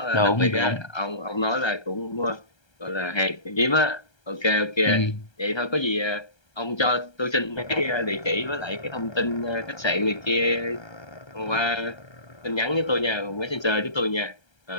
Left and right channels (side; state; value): right; late; 1.3 ms